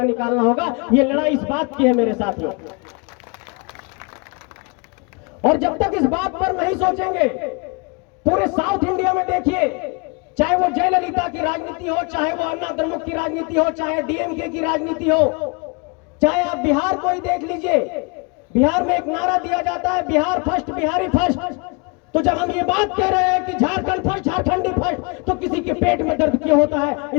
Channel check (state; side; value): quieter; right; 31.4 dB